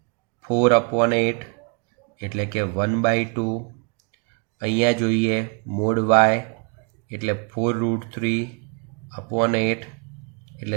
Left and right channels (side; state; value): left; quieter; 35.4 dB